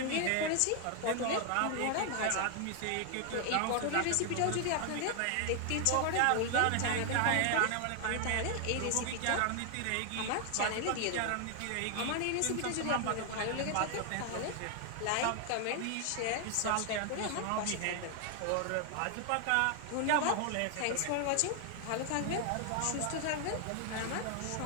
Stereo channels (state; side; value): different; both; correlation 0.00